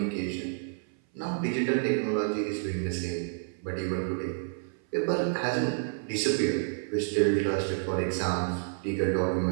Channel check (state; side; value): silent; left; 57 dB below the other